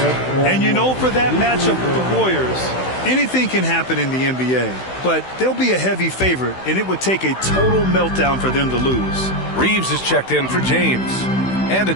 And you know, for that matchup with the Warriors, anything can happen in the NBA, but they'll be a heavy favorite, and it would take a total meltdown for them to lose. Reeves is checked in for James. And a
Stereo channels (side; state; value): right; late; 16 ms